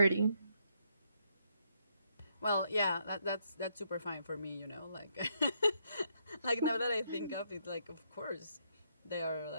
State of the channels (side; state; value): both; inverted; correlation -0.74